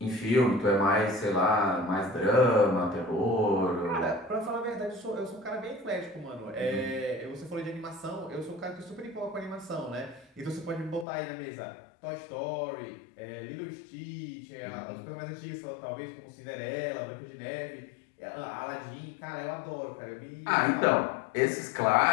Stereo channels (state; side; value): drops out; right; at 11.1 s